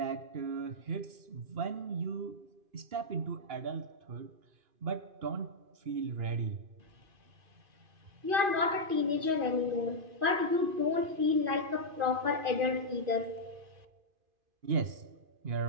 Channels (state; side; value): late; left; 2.5 ms